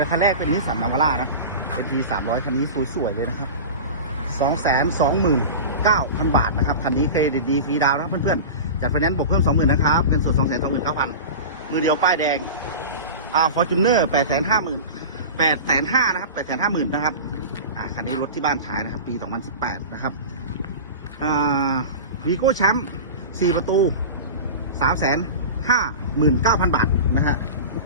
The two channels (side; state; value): both; inverted; correlation -0.30